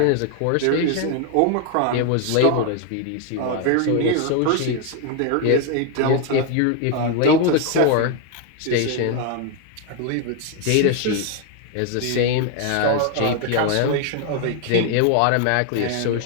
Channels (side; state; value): both; different; correlation 0.00